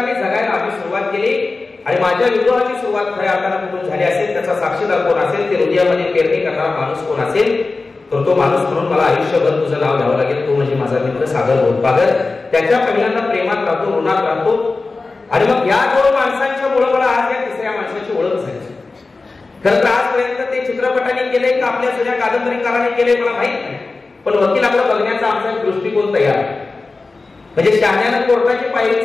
जगायला आम्ही सुरुवात केली. आणि माझ्या विद्रोहाची सुरुवात खऱ्या अर्थानं कुठून झाली असेल, त्याचा साक्षीदार कोण असेल, ते हृदयामध्ये पेरणी करणारा माणूस कोण असेल, तर तो माणूस म्हणून मला आयुष्यभर तुझं नाव घ्यावं लागेल. तो म्हणजे माझा मित्र सागर गोदपागर. त्याच्या पहिल्यांदा प्रेमात राहतो, ऋणात राहतो. आणि मग या दोन माणसांच्या मुळे मला आज या तिसऱ्या माणसाची ओळख झाली. खरं तर आजपर्यंत ते चित्रपटाने केले का आपल्या जुन्या कादंबरीकाराने केले मला माहित नाही, पण वकिलाकडे बघण्याचा आमचा दृष्टिकोन तयार आहे. म्हणजे शहाण्यानं कोर्टाची पायरी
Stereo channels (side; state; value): right; quieter; 3.7 dB